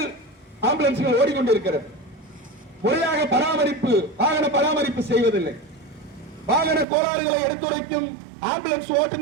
ஆம்புலன்ஸ்கள் ஓடிக்கொண்டிருக்கிறது. முறையாக பராமரிப்பு, வாகன பராமரிப்பு செய்வதில்லை. வாகன கோளாறுகளை எடுத்துரைக்கும் ஆம்புலன்ஸ்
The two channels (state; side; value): drops out; left; at 6.9 s